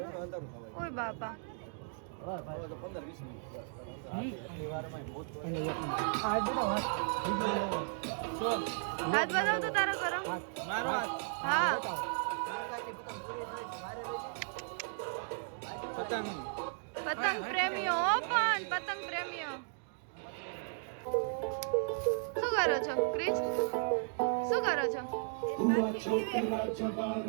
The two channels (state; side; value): silent; left; digital silence